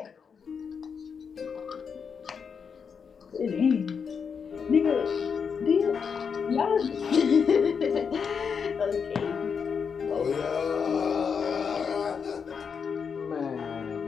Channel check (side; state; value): right; quieter; 6.3 dB